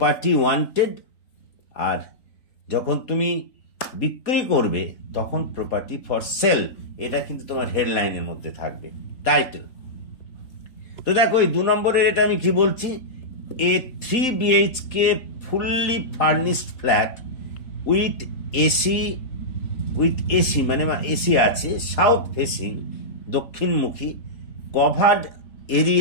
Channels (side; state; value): right; late; 3.8 ms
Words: ওয়ান্টেড, আর যখন তুমি বিক্রি করবে তখন প্রপার্টি ফর সেল। এটা কিন্তু তোমার হেডলাইনের মধ্যে থাকবে, টাইটেল। তো দেখো, এই 2 নম্বরের এটা আমি কি বলছি, a 3 BHK fully furnished flat with AC মানে এসি আছে, সাউথ ফেসিং দক্ষিণমুখী, covered